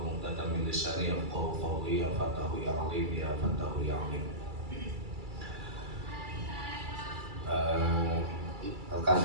'uqdatam min lisani yafqahu qawli. Ya Fatahu ya Alim, ya Fatahu ya Alim.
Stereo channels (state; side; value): late; left; 2.3 ms